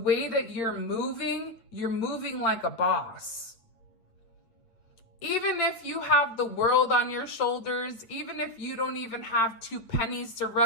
that you're moving like a boss. Even if you have the world on your shoulders, even if you don't even have 2 pennies to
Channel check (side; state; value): right; late; 8.5 ms